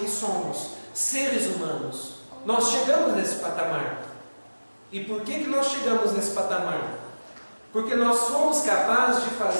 somos, seres humanos. Nós chegamos nesse patamar. E por que nós chegamos nesse patamar? Porque nós somos capazes de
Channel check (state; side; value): inverted; both; correlation -1.00